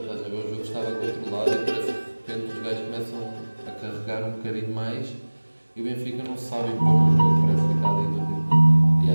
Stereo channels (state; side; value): inverted; both; correlation -1.00